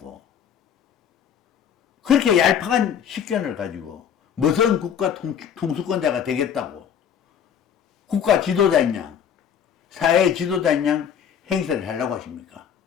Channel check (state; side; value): quieter; right; 8.4 dB